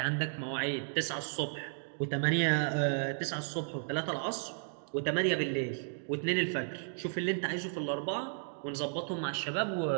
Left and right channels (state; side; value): silent; left; digital silence